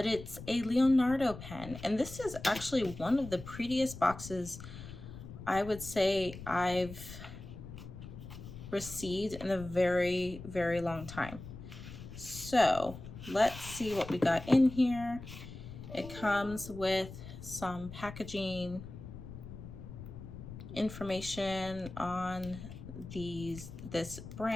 it's a Leonardo pen. And this is actually one of the prettiest boxes I would say I've received in a very, very long time. So let's see what we got in here. It comes with some packaging information on this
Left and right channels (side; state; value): left; noise; rumble, 12 dB below the sound